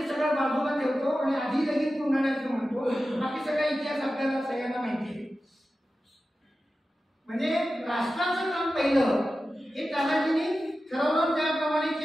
सगळं बाजूला ठेवतो आणि आधी लगेच कोंढाण्याचं म्हणतो. बाकी सगळा इतिहास आपल्याला सगळ्यांना माहिती आहे. म्हणजे राष्ट्राचं काम पहिलं हे तानाजींनी ठरवलं, त्याप्रमाणे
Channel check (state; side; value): normal; both; correlation 0.93